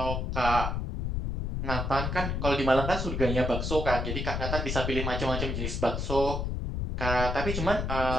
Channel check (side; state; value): left; noise; rumble, 1 dB below the sound